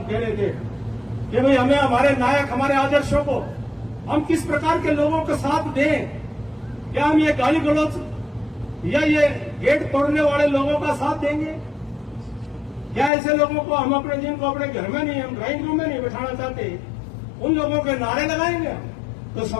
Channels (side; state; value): right; drops out; at 13.1 s